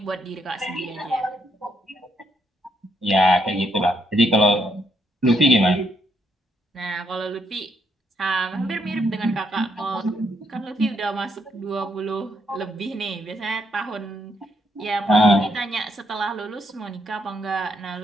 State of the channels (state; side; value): normal; both; correlation 0.75